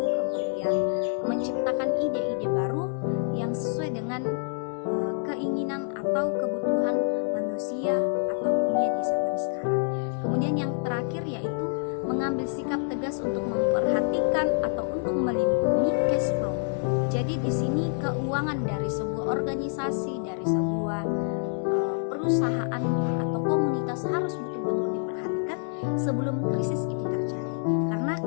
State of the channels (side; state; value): right; silent; 60 dB below the other